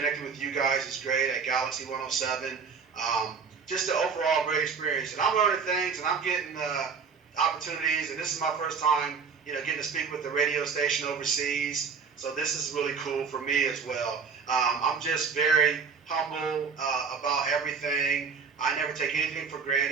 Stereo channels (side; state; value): left; quieter; 5.7 dB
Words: with you guys is great at Galaxy 107. Just an overall great experience. And I'm learning things, and I'm getting opportunities. And this is my first time, getting to speak with the radio station overseas. So this is really cool for me as well. I'm just very humble about everything. I never take anything for